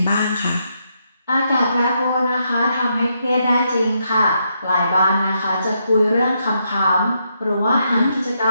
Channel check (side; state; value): both; inverted; correlation -0.79